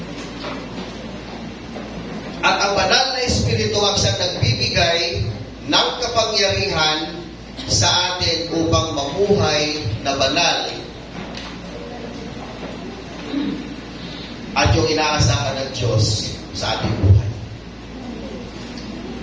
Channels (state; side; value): identical; both; correlation 1.00